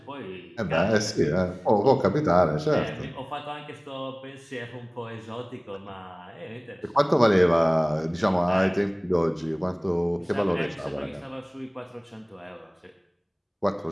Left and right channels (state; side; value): identical; both; correlation 1.00